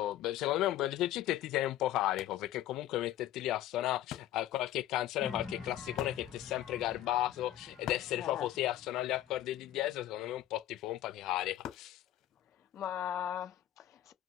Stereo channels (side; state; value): right; quieter; 13.3 dB